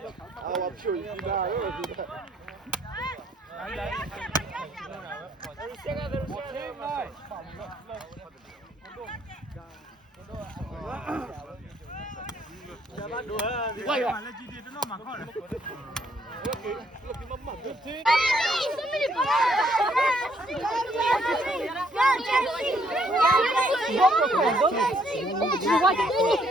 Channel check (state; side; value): normal; both; correlation 0.68